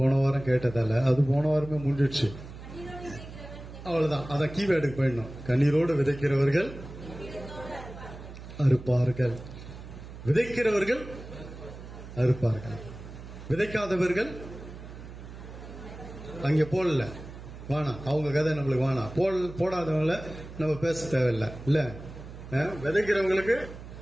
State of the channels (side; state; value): right; noise; hum, 14 dB below the sound